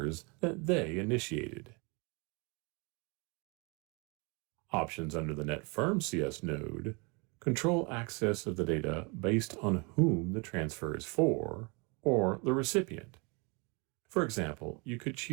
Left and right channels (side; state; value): left; quieter; 30.4 dB